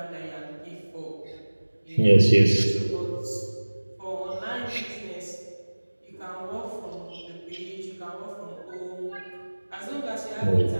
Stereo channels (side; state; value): both; inverted; correlation -1.00